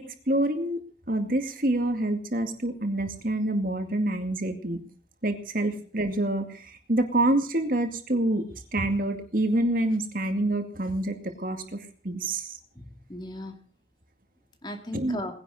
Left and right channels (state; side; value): normal; both; correlation 0.59